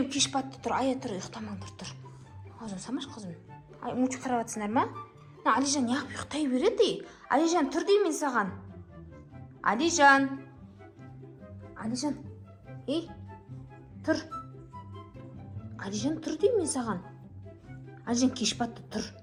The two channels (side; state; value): both; identical; correlation 1.00